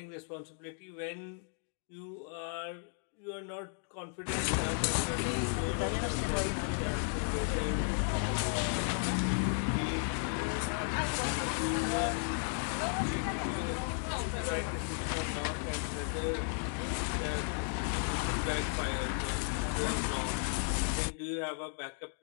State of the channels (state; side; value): silent; right; 55 dB below the other